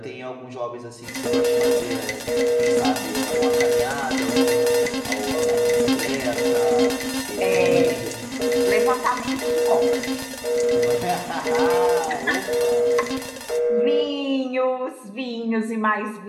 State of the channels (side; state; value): both; identical; correlation 1.00